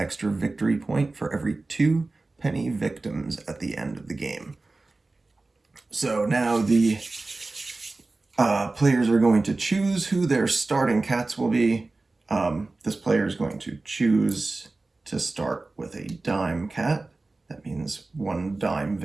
victory point for every 2 penny victims at the end of the game. So now the players are going to choose who their starting cats will be. This player is going to choose to start with a dime cat. That means 1 dime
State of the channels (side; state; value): left; quieter; 3.3 dB